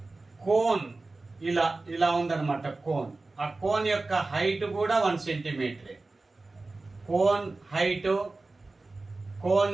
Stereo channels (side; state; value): left; quieter; 3.4 dB